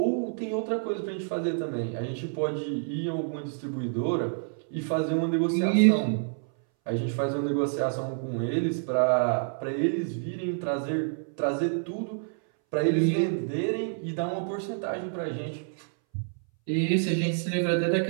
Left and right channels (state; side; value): silent; left; 59 dB below the other